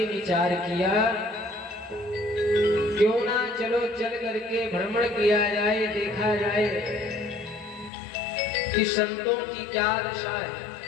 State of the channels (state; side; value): drops out; right; at 7.9 s